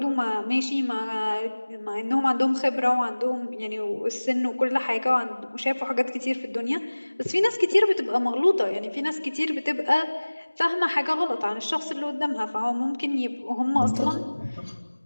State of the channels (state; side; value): inverted; both; correlation -1.00